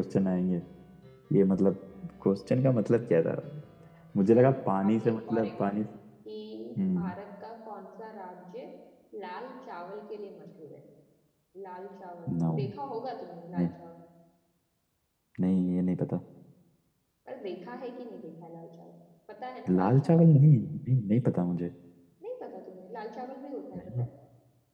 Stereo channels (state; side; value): identical; both; correlation 1.00